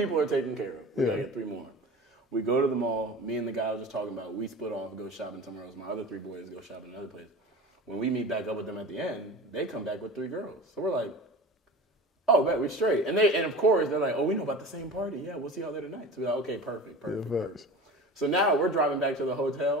are taken care of. We gotta get 3 more. We go to the mall. Me and the guy I was just talking about, we split off, go shopping somewhere else. My other 3 boys go shopping another place. When we meet back up with them at the end, they come back with 3 girls. So we're like, oh, bet, we're straight. And of course, they're like, oh, we know about the same party. Yeah, we'll see y'all there tonight. So we're like, okay, perfect. So now we're driving back to the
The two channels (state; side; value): normal; both; correlation 0.35